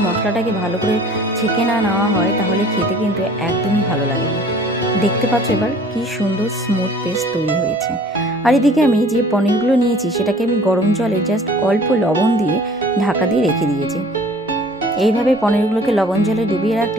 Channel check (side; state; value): both; normal; correlation 0.50